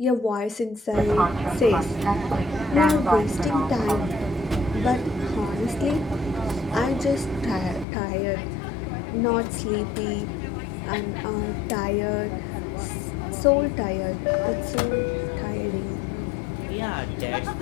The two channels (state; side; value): drops out; right; at 7.9 s